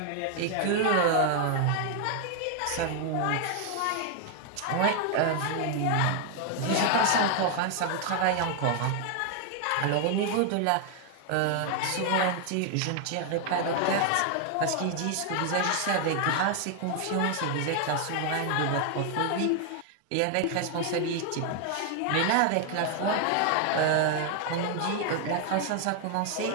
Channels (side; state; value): both; different; correlation 0.00